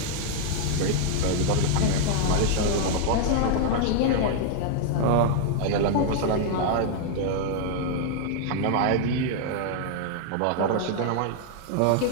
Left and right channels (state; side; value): different; both; correlation 0.00